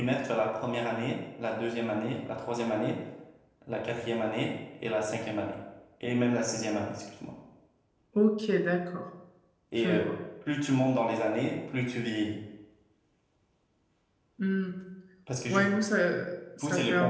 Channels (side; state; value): both; identical; correlation 1.00